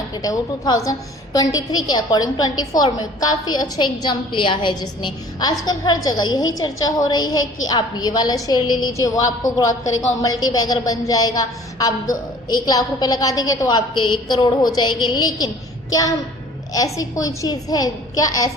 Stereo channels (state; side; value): normal; both; correlation 0.50